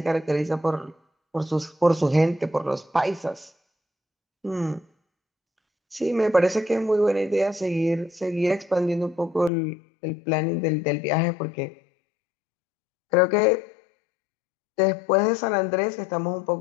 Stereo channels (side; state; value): right; drops out; at 9.5 s